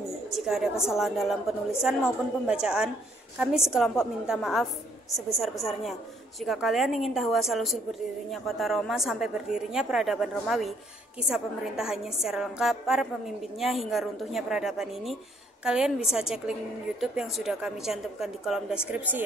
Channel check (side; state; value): both; normal; correlation 0.66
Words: Jika ada kesalahan dalam penulisan maupun pembacaan, kami sekelompok minta maaf sebesar-besarnya. Jika kalian ingin tahu asal-usul berdirinya kota Roma sampai berdirinya peradaban Romawi, kisah pemerintahannya secara lengkap, para pemimpinnya hingga runtuhnya peradaban ini, kalian bisa cek link YouTube yang sudah kami cantumkan di kolom deskripsi